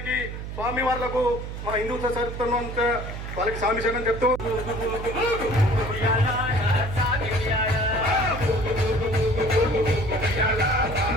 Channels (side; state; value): right; noise; hum, 8 dB below the sound